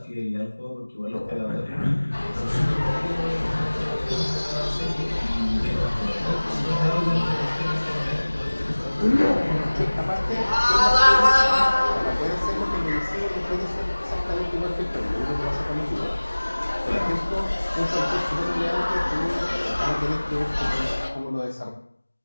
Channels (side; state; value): both; inverted; correlation -1.00